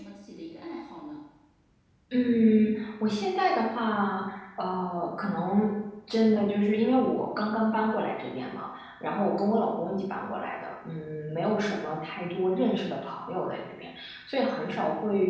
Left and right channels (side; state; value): both; identical; correlation 1.00